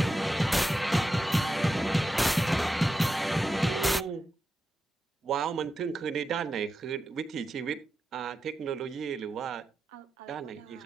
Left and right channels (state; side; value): normal; both; correlation 0.90